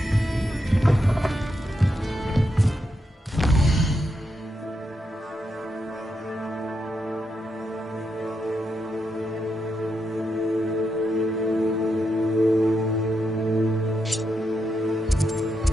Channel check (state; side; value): normal; both; correlation 0.83